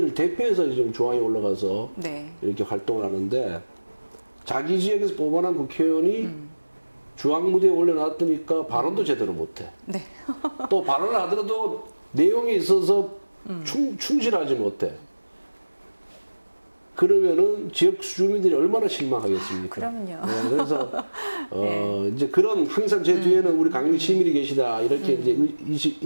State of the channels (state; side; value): inverted; both; correlation -1.00